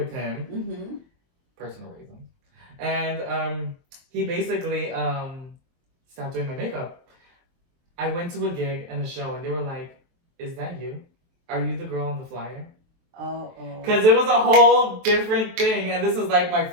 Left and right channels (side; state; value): left; late; 23 ms